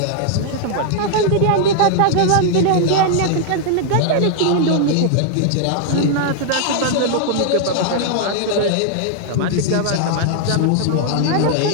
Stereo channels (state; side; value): different; both; correlation 0.00